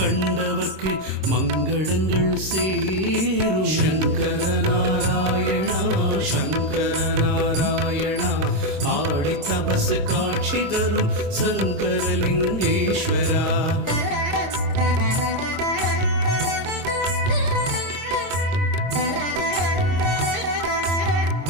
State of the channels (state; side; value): late; left; 26 ms